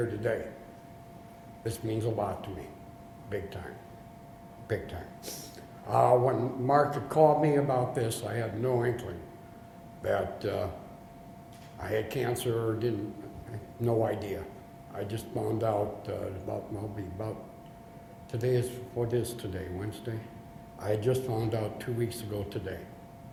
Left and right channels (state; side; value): identical; both; correlation 1.00